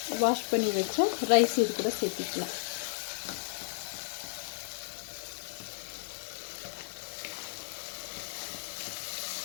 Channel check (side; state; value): right; silent; 55 dB below the other